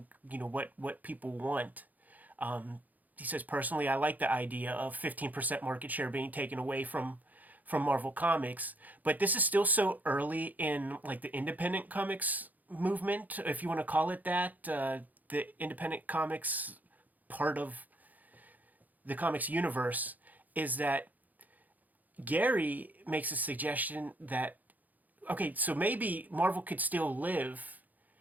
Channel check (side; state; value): left; late; 0.081 ms